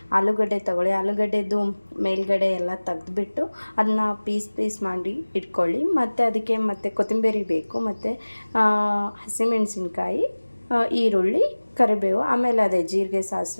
ಆಲೂಗಡ್ಡೆ ತೊಗೊಳ್ಳಿ. ಆಲೂಗಡ್ಡೆದು ಮೇಲ್ಗಡೆ ಎಲ್ಲ ತೆಗೆದುಬಿಟ್ಟು ಅದನ್ನ ಪೀಸ್ ಮಾಡಿ ಇಟ್ಕೊಳ್ಳಿ. ಮತ್ತು ಅದಕ್ಕೆ ಕೊತ್ತಂಬರಿ ಬೇಕು, ಮತ್ತು ಹಸಿಮೆಣಸಿನ್ಕಾಯಿ, ಈರುಳ್ಳಿ, ಕರಿಬೇವು, ಆಮೇಲೆ ಅದೇ ಜೀರಿಗೆ,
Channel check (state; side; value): inverted; both; correlation -1.00